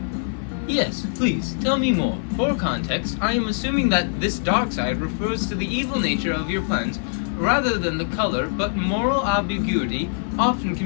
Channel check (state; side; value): silent; right; 63 dB below the other